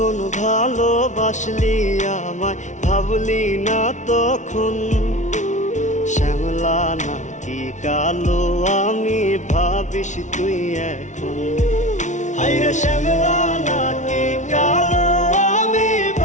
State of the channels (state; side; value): late; right; 0.36 ms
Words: ভালোবাসলি আমায় ভাবলি না তখন, শ্যামলা নাকি কালো আমি ভাবিস তুই এখন। হায়রে শ্যামলা নাকি কালো